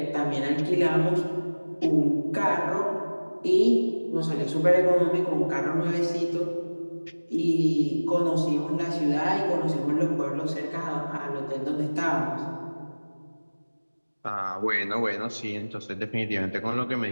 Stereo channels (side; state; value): both; inverted; correlation -1.00